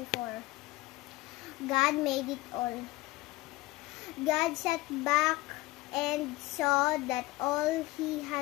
God made it all. God sat back and saw that all he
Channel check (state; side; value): quieter; right; 19.8 dB